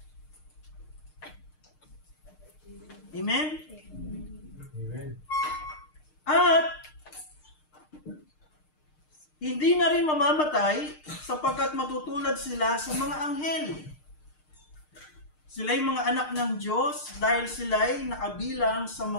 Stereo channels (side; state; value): right; late; 6.6 ms